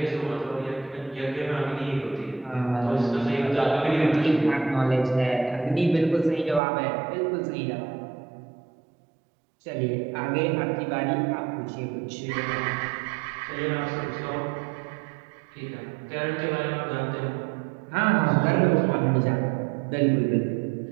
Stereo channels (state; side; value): drops out; left; at 6.6 s